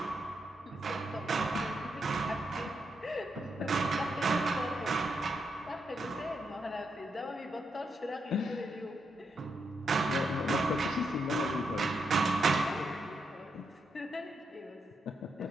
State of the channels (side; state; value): both; normal; correlation 0.82